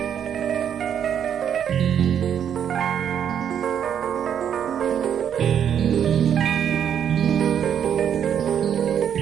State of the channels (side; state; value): left; quieter; 8.8 dB